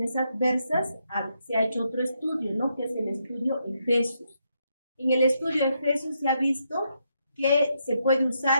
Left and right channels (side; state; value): both; inverted; correlation -0.79